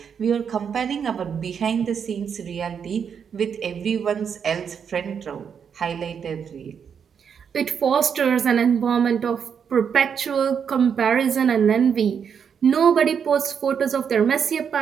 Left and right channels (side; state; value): left; quieter; 7.2 dB